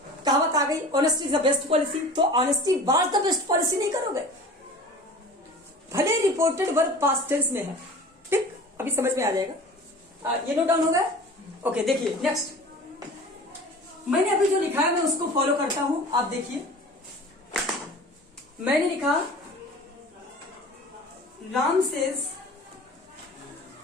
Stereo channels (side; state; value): both; normal; correlation 0.40